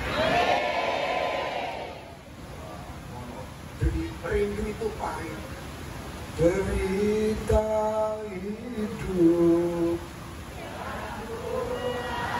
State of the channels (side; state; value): both; identical; correlation 1.00